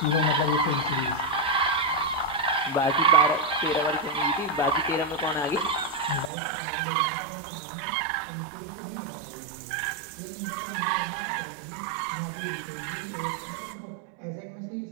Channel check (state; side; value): drops out; left; at 6.3 s